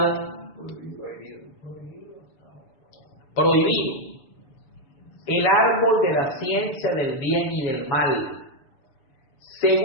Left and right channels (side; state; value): right; late; 6.9 ms